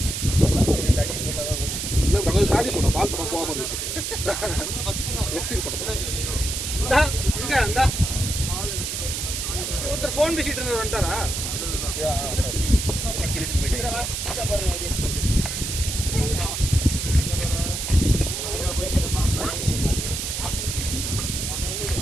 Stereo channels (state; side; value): noise; right; hiss, 3 dB below the sound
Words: இல்லை நாங்கள் சாதி போனோம், பால் படம் போகாமல் இருக்கு. ஒருத்தர் ஃபோன் பேசிட்டு இருந்தவர் வந்துட்டாரா?